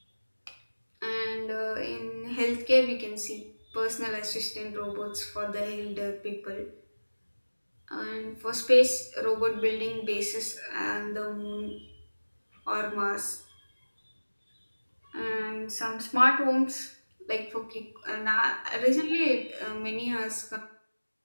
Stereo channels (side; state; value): both; inverted; correlation -1.00